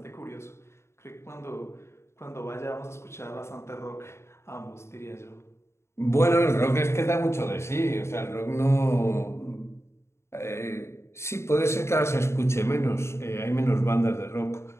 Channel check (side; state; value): right; late; 0.13 ms